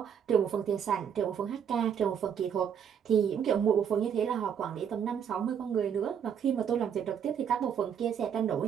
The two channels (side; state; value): left; quieter; 8.1 dB